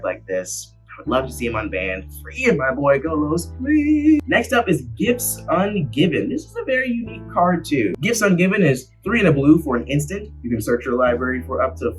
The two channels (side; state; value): both; identical; correlation 1.00